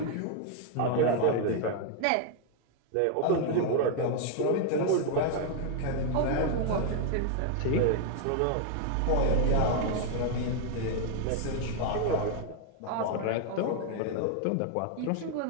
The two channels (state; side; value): different; both; correlation 0.00